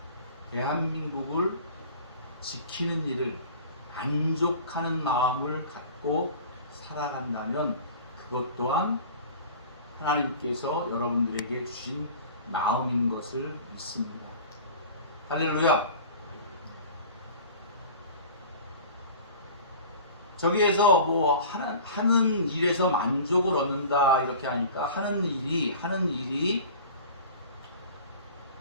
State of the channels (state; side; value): inverted; both; correlation -0.41